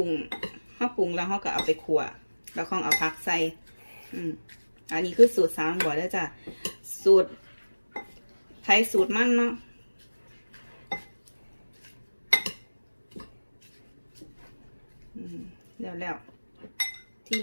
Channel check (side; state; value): both; inverted; correlation -1.00